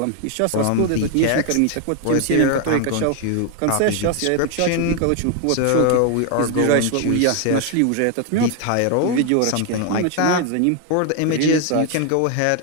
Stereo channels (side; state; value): both; different; correlation 0.01